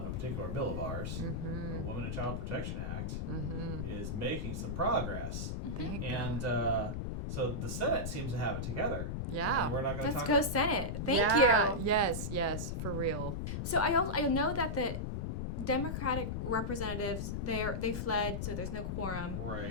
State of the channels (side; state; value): left; noise; rumble, 2 dB below the sound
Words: a particular bill of ours, the Women and Child Protection Act, is making some progress. And so the Senate seems to have it together. Yeah. And we're not going to Let's talk go Senate. Thank you. Yes, for real. So I know that the Democratic representatives they fled, so there's no quorum.